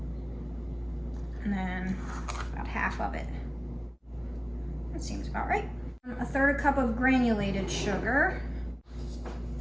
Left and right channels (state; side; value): identical; both; correlation 1.00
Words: and then about half of it. That seems about right. 1/3 cup of granulated sugar.